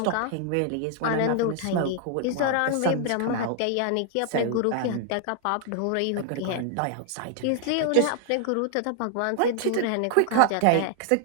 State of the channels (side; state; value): both; different; correlation 0.00